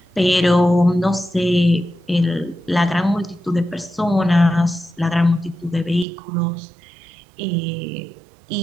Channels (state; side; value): drops out; left; at 6.1 s